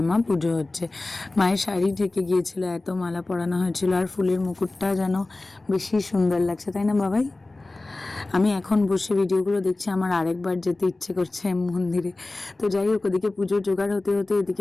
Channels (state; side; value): quieter; right; 3.0 dB